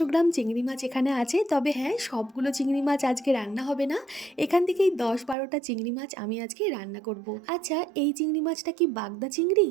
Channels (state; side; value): drops out; left; at 5.4 s